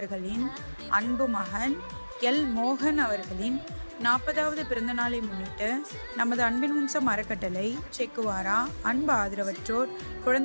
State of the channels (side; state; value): both; inverted; correlation -1.00